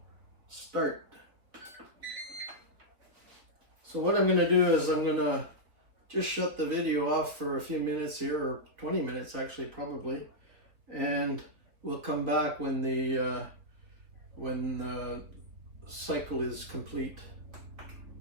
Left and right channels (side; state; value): left; late; 3.9 ms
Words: start. So what I'm going to do is I'm going to just shut the video off for a few minutes here, or 20 minutes actually probably, and we'll come back when the cycle is complete.